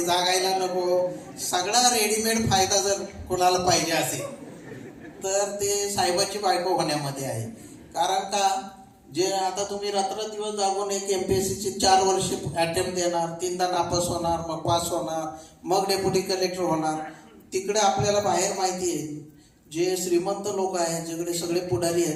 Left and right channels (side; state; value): both; identical; correlation 1.00